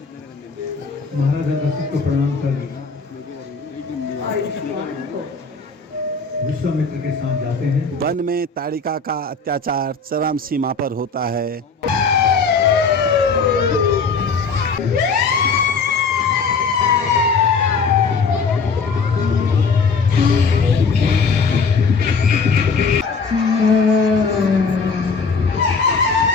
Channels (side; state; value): right; quieter; 4.7 dB